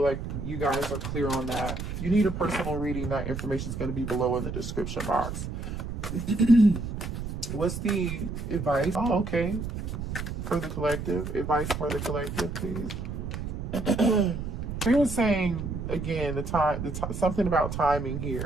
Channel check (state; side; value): noise; right; rumble, 5 dB below the sound